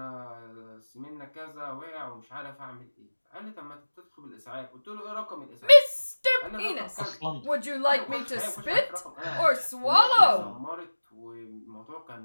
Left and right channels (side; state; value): both; inverted; correlation -1.00